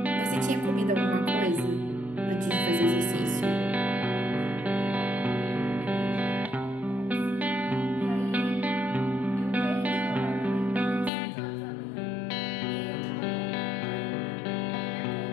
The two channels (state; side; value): drops out; right; at 11.1 s